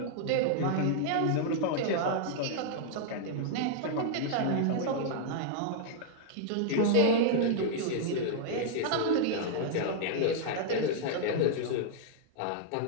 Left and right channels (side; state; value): both; different; correlation -0.01